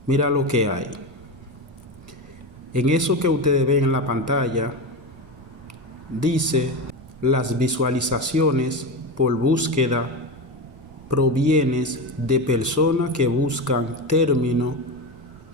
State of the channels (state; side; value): noise; right; rumble, 22 dB below the sound